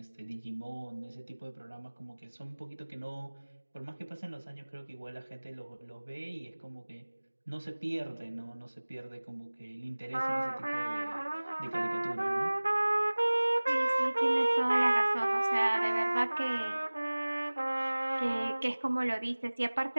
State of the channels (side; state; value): both; inverted; correlation -1.00